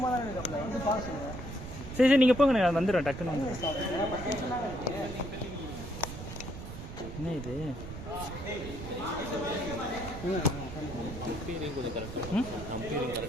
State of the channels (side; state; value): right; noise; rumble, 9 dB below the sound